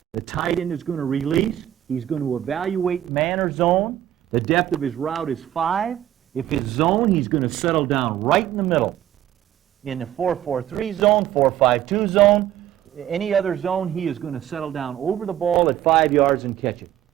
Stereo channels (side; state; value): left; quieter; 12.3 dB